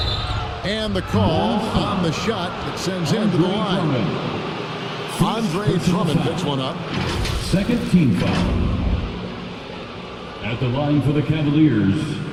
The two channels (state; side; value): identical; both; correlation 1.00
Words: And the call on the shot that sends him to the line. Andre Drummond picks one up. Second team foul. At the line for the Cavaliers,